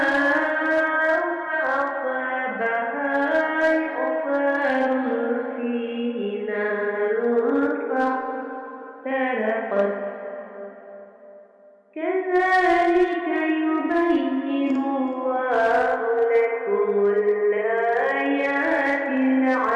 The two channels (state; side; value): identical; both; correlation 1.00